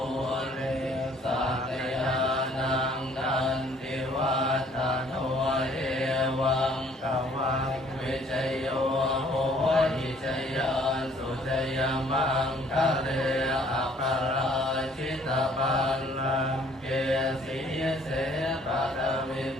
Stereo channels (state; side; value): normal; both; correlation 0.59